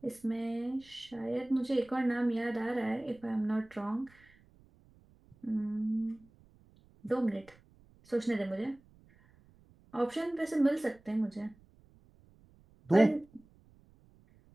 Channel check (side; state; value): right; noise; rumble, 28 dB below the sound